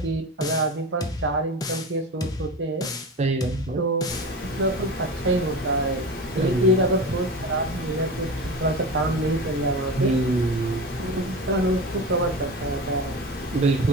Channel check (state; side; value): normal; both; correlation 0.28